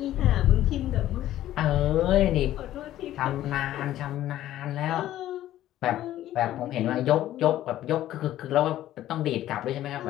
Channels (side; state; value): right; quieter; 13.4 dB